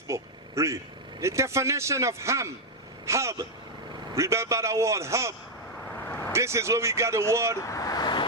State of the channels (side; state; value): both; normal; correlation 0.01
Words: book. Read. The definition of ham. Ham. Remember the word ham. This is where we got the word